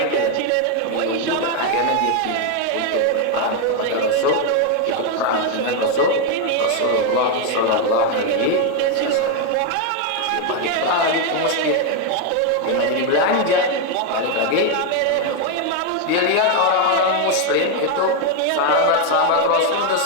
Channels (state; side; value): different; both; correlation 0.01